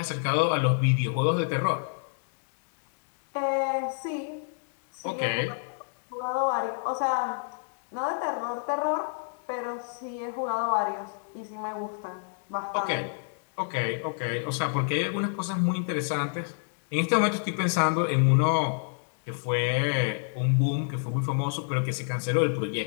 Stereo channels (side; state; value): right; silent; digital silence